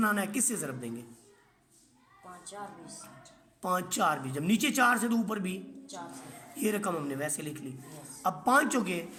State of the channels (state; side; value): identical; both; correlation 1.00